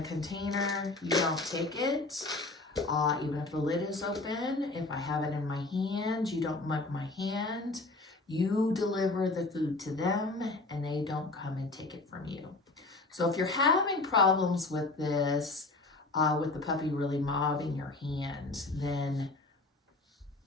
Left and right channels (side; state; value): right; quieter; 3.1 dB